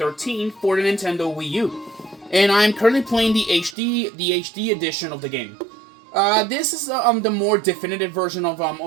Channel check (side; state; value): left; drops out; at 3.8 s